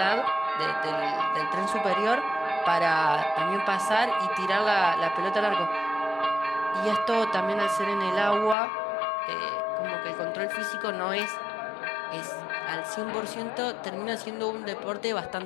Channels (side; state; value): right; drops out; at 8.6 s